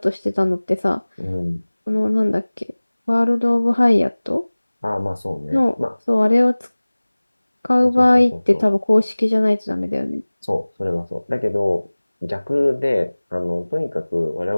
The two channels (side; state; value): both; inverted; correlation -1.00